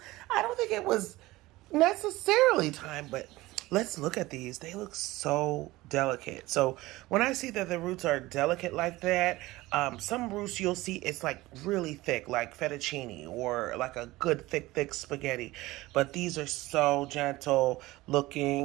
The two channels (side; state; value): left; quieter; 19.0 dB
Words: I don't think it was necessarily time, but let's look at these. They look so delicate. So when I see that the roots are delicate like that, some roots you'll see it's like really thick, like fettuccine or like a good thick spaghetti. But these are so gentle